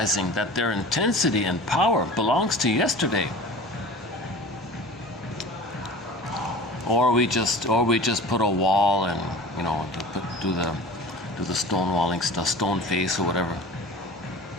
that their intensity and power belongs to yesterday. Or we just put a wall and, you know, do the stonewalling stuff, stone face or whatever.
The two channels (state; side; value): normal; both; correlation 0.38